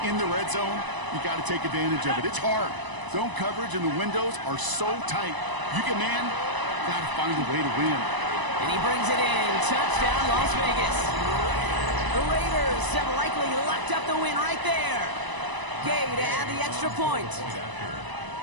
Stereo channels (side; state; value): left; late; 1.0 ms